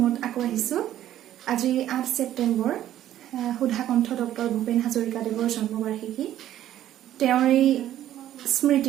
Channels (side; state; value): left; quieter; 12.3 dB